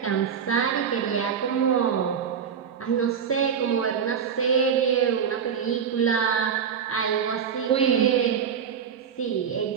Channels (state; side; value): quieter; left; 7.4 dB